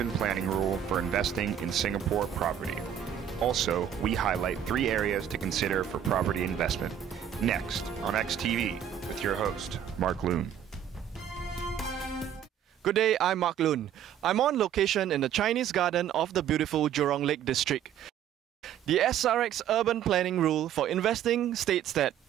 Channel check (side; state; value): left; quieter; 9.6 dB